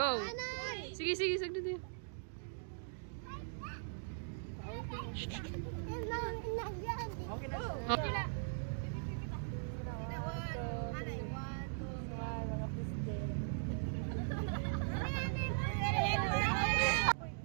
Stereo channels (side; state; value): left; silent; digital silence